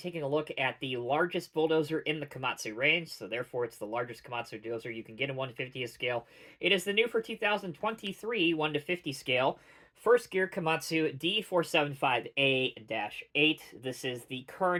a look at the largest bulldozer in the Komatsu range, so therefore it's the largest Komatsu dozer you can get in 1/50th scale. It is the new for 2023 1/50 scale, first gear Komatsu D475A-8. This is the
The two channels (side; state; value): both; identical; correlation 1.00